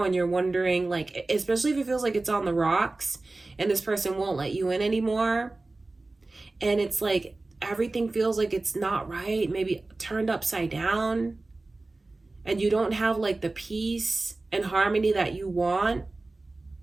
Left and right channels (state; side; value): quieter; left; 3.2 dB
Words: and you're wondering, like, especially if it feels like it's on the rocks and this person won't let you in anymore. And it's like everything feels like it's not right, maybe turned upside down. And you don't have like the peace and harmony that you want.